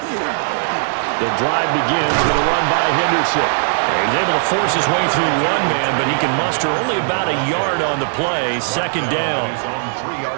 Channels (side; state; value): left; silent; digital silence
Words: The drive begins with a run by Henderson. He's able to force his way through one man, but he can muster only about a yard on the play. Second down.